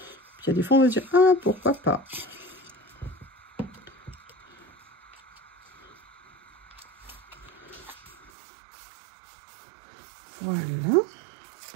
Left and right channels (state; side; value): drops out; left; at 8.3 s